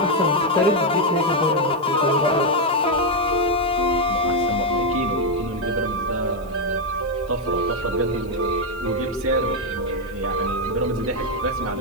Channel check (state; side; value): noise; left; hiss, 28 dB below the sound